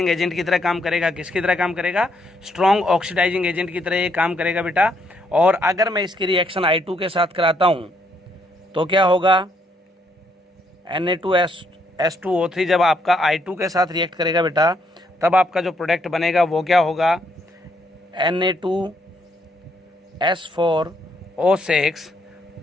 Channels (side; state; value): both; normal; correlation 0.73